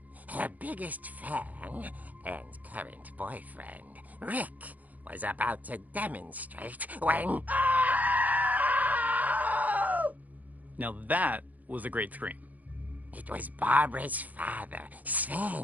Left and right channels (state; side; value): late; left; 0.079 ms